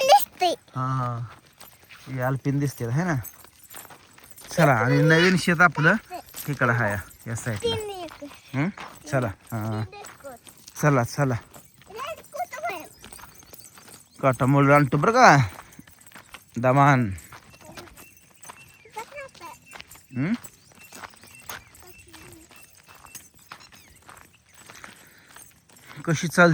हा हा हे अल्पिन दिसते है ना. चला आणि नवीन शेत आपलं इकडं आहे या साईडला. चला हा चला चला. काटा मोड आणतो बरं का दमान. कशी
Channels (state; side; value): identical; both; correlation 1.00